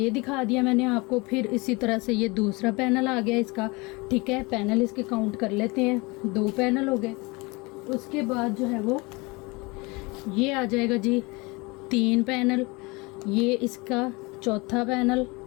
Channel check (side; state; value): right; quieter; 25.8 dB